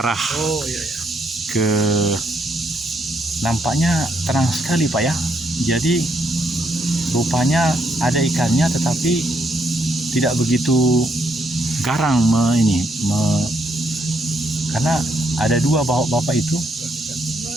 Oh iya ya. ke nampaknya terang sekali Pak ya. Jadi rupanya ada ikannya tetapi tidak begitu garang karena ada dua bapak itu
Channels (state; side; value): normal; both; correlation 0.75